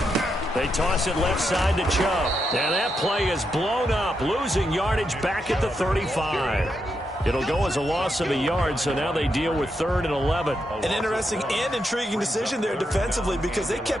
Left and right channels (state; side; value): normal; both; correlation 0.83